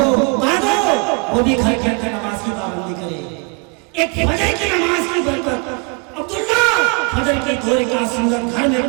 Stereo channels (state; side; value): quieter; left; 32.7 dB